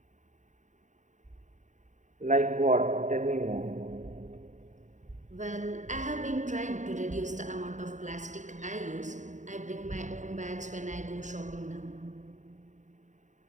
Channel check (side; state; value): left; late; 0.35 ms